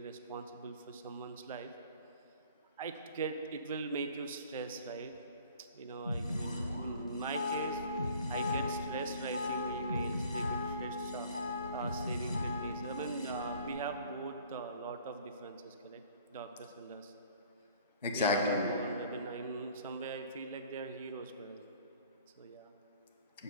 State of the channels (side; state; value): both; inverted; correlation -0.52